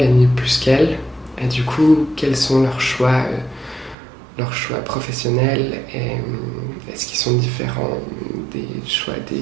plus qu'elles, et du coup quels sont leurs choix professionnels, et est-ce qu'ils sont différents des choix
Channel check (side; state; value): left; drops out; at 4.0 s